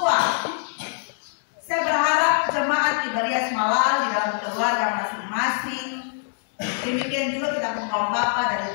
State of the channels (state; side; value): silent; right; digital silence